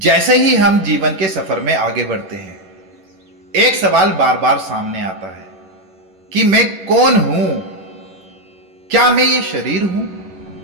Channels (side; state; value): left; late; 10 ms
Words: ही हम जीवन के सफर में आगे बढ़ते हैं, एक सवाल बार बार सामने आता है कि मैं कौन हूं? क्या मैं ये शरीर हूं,